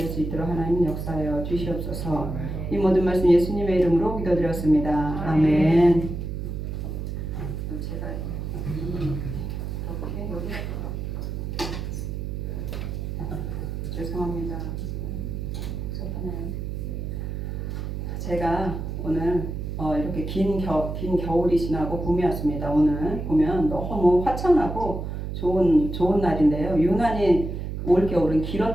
수 있도록 하나님 역사하여 주시옵소서. 이 모든 말씀 예수님의 이름으로 기도드렸습니다. 아멘. 제가 이렇게 여기 죄송합니다. 제가 오늘 이렇게 긴 겨울이 지나고 봄이 왔습니다. 오늘 보면 너무 화창하고 좋은 날인데요. 유난히 올겨울은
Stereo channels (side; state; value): right; noise; hum, 5 dB below the sound